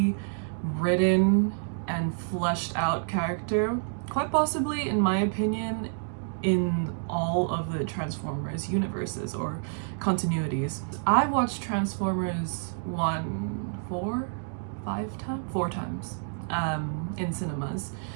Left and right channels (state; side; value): silent; left; digital silence